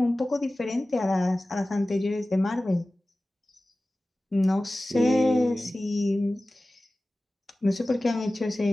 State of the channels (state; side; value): normal; both; correlation 0.96